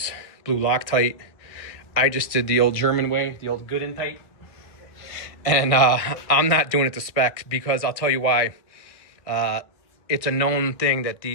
blue Loctite. I just did the old German way, the old good and tight. And I'm not doing it to spec because I'll tell you why. It's a known thing that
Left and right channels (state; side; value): late; right; 1.6 ms